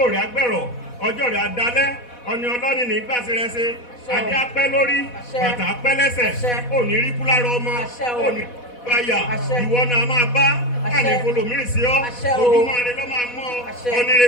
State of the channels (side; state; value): right; late; 4.1 ms